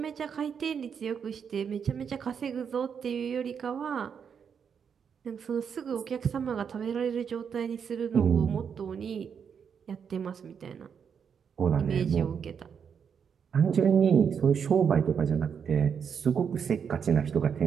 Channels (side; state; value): left; quieter; 7.1 dB